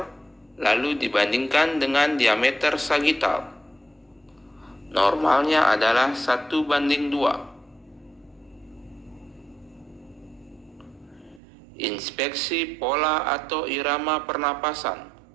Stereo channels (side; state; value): left; drops out; at 11.4 s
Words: lalu dibandingkan dengan diameter sagital. Normalnya adalah 1:2. Inspeksi pola atau irama pernapasan.